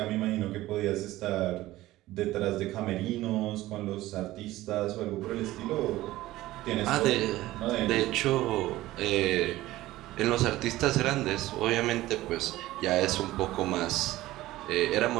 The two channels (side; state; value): left; quieter; 16.7 dB